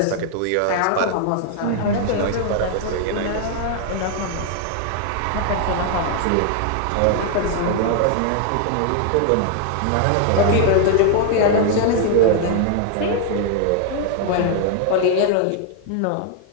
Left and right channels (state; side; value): different; both; correlation 0.00